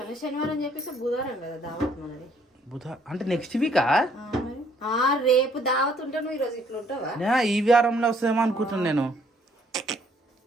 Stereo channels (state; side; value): normal; both; correlation 0.64